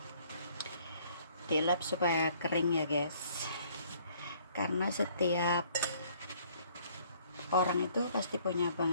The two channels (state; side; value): inverted; both; correlation -0.60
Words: dilap supaya kering ya guys, karena setiap orang itu pasti punya